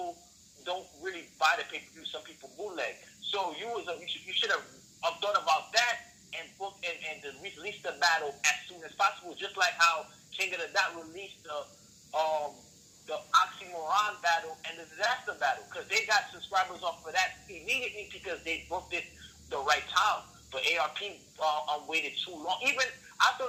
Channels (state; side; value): identical; both; correlation 1.00